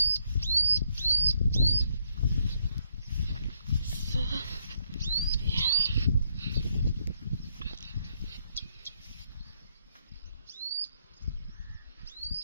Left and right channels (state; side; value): inverted; both; correlation -0.73